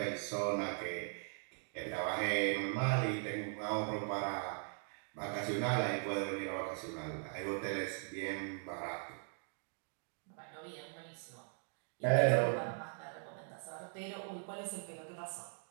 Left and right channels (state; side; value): silent; left; 51 dB below the other